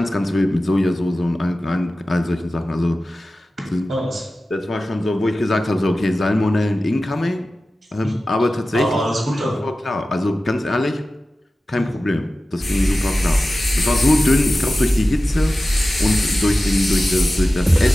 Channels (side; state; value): both; normal; correlation 0.95